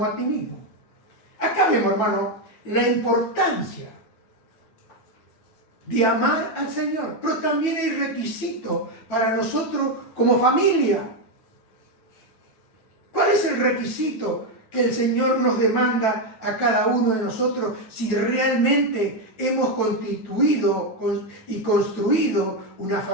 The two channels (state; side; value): late; right; 9.2 ms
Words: a ti mismo. Acá vemos, hermano, la importancia de amar al Señor. Pero también hay requisito para nosotros como familia. ¿Cuál es el requisito que el Señor nos demanda a cada uno de nosotros si realmente hemos constituido y construido una